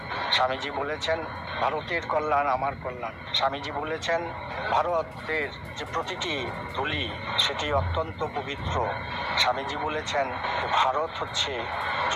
স্বামীজি বলেছেন ভারতের কল্যাণ আমার কল্যাণ। স্বামীজি বলেছেন ভারতের যে প্রতিটি ধূলি সেটি অত্যন্ত পবিত্র। স্বামীজি বলেছেন ভারত হচ্ছে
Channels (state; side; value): identical; both; correlation 1.00